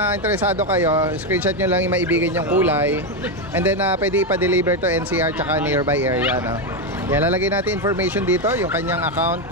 interesado kayo, screenshot nyo lang yung maibigan yung kulay. And then pwede ipa-deliver to NCR tsaka nearby area, no? Yan, lalagay natin information dito, yung kanyang account,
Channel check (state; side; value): normal; both; correlation 0.08